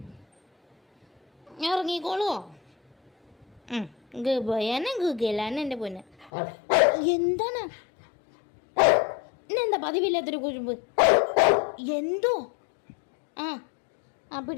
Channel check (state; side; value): drops out; right; at 6.3 s